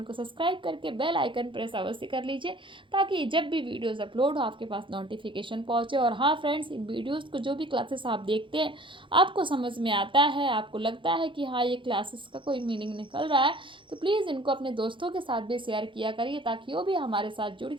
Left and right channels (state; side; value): late; left; 0.24 ms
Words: को सब्सक्राइब करके बेल आइकन प्रेस अवश्य कर लीजिए, ताकि जब भी वीडियोज़ अपलोड हो आपके पास नोटिफिकेशन पहुँचे। और हाँ फ्रेंड्स, इन वीडियोज़ को जो भी क्लासेस आप देखते हैं आपको समझ में आता है, आपको लगता है कि हाँ ये क्लासेस का कोई मीनिंग निकल रहा है, तो प्लीज़ इनको अपने दोस्तों के साथ भी शेयर किया करिए, ताकि वो भी हमारे साथ जुड़